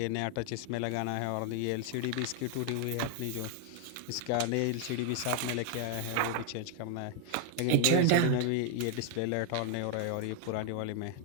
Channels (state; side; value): different; both; correlation 0.00